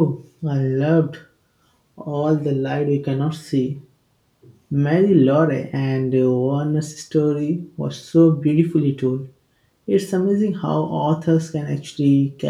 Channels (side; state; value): both; identical; correlation 1.00